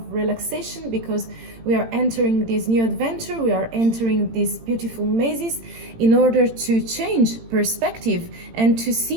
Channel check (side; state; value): left; late; 18 ms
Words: relaxation, because we are entering this new adventure, we are entering these beautiful mazes in order to change perspective and to